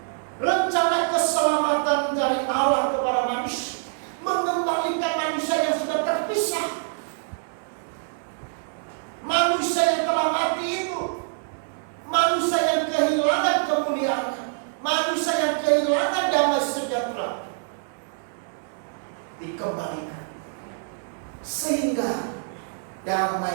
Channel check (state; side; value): silent; left; 61 dB below the other